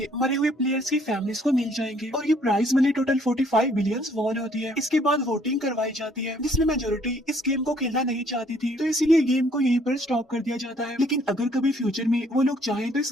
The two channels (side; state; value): both; normal; correlation 0.63